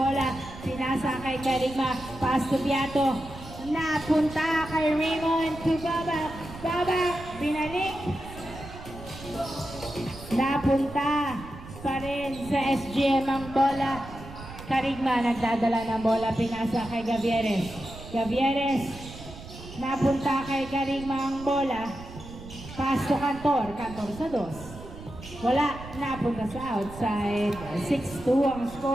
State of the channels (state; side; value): noise; right; rumble, 14 dB below the sound